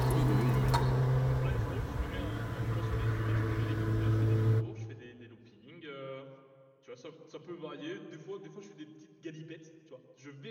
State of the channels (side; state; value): both; identical; correlation 1.00